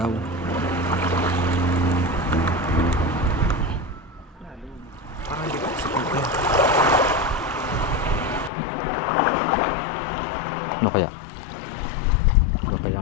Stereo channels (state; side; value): drops out; right; at 8.5 s